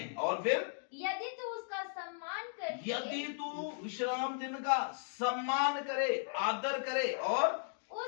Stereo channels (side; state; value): right; silent; digital silence